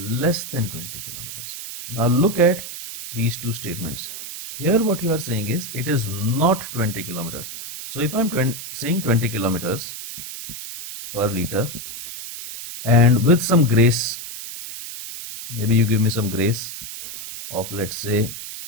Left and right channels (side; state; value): right; noise; hiss, 9 dB below the sound